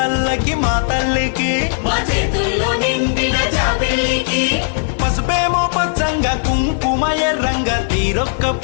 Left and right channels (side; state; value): right; silent; 55 dB below the other